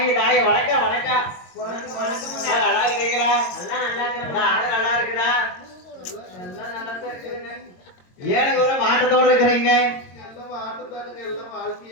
தாய் வணக்கம் வணக்கம் வணக்கம். நல்லா இருக்கிறீங்களா? எல்லாம் நல்லா இருக்கிறேன். ஆடு நல்லா இருக்குதா? எல்லாம் நல்லா தான் இருக்குதுங்க. ஏனுங்க ஒரு மாட்டத்தோடு இருக்கிறீங்க? எல்லாம் மாட்டுதானுங்க. எல்லாம்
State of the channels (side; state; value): right; late; 22 ms